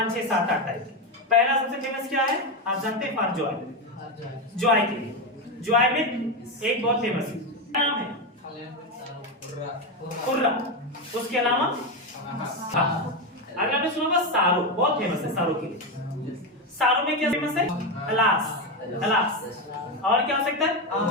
6 7 8 टाइप। पहला सबसे फेमस क्या है, आप जानते हैं, फॉर जॉय, जॉय के लिए, जॉय में एक बहुत फेमस नाम है कुर्रा, उसके अलावा अगर आपने सुना होगा सारो, बहुत फेमस है सारो के लिए। सारो में क्या फेमस है, अलास, अलास। और क्या हो सकता है,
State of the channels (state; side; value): normal; both; correlation 0.11